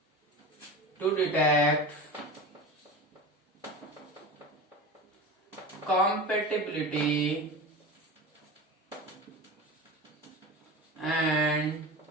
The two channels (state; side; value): normal; both; correlation 0.30